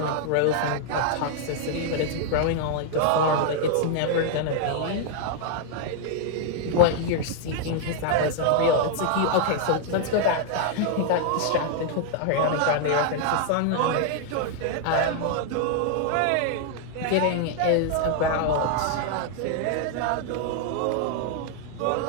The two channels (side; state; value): both; different; correlation 0.00